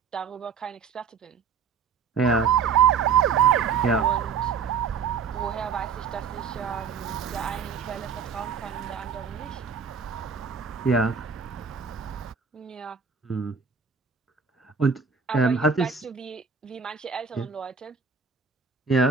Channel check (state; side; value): quieter; left; 6.2 dB